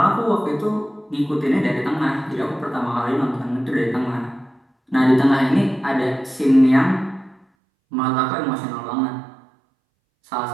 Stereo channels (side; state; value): left; drops out; at 7.5 s